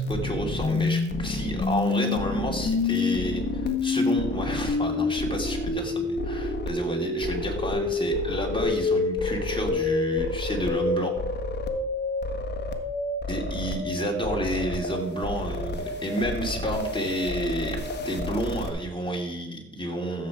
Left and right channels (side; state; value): both; normal; correlation 0.47